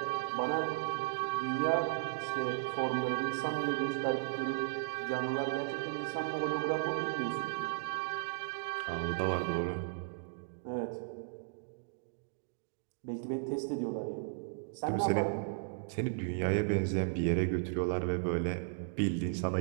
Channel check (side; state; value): left; silent; digital silence